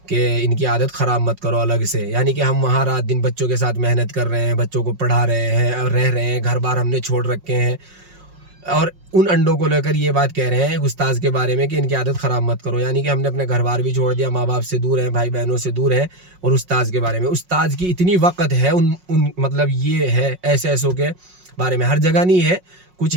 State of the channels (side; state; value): left; late; 5.5 ms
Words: کہ ان کی عادت خراب مت کرو الگ سے، یعنی کہ ہم وہاں رات دن بچوں کے ساتھ محنت کر رہے ہیں، بچوں کو پڑھا رہے ہیں اور رہ رہے ہیں، گھر بار ہم نے چھوڑ رکھے ہیں، اور ان انڈوں کو لے کر یہ بات کہہ رہے ہیں استاذ کے بارے میں کہ ان کی عادت خراب مت کرو، یعنی کہ ہم نے اپنے گھر بار بھی چھوڑ دیا، ماں باپ سے دور ہیں، بھائی بہنوں سے دور ہیں، اور استاذ کے بارے میں، استاذ کی اتنی وقت ہے مطلب یہ ہے ایسوں کے بارے میں، ہر جگہ نہیں ہے، کچھ